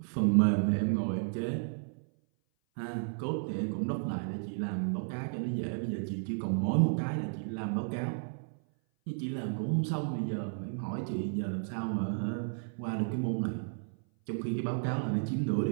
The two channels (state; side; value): silent; left; 56 dB below the other